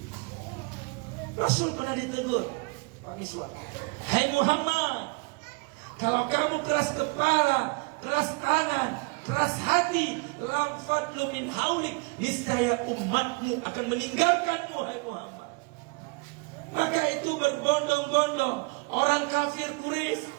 Rasul pernah ditegur, Pak Miswar, "Hai Muhammad, kalau kamu keras kepala, keras tangan, keras hati, lam fadlu min haulik, niscaya umatmu akan meninggalkanmu, hai Muhammad." Maka itu berbondong-bondong orang kafir Quraisy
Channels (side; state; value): left; quieter; 30.3 dB